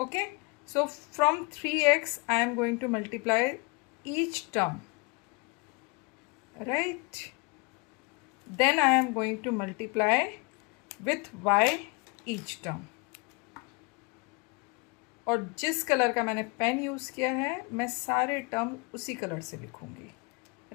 so from 3x I am going to multiply each term, right? Then I am going to multiply with y each term. और जिस कलर का मैंने पेन यूज़ किया है मैं सारे टर्म उसी कलर से लिखूंगी,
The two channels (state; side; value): quieter; right; 30.3 dB